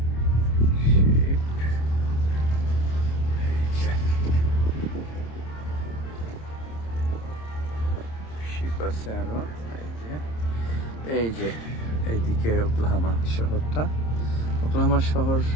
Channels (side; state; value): right; late; 26 ms